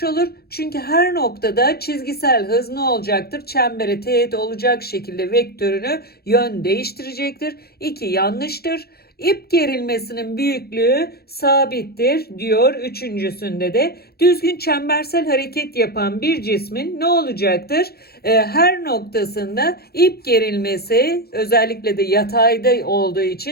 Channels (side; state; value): right; late; 0.46 ms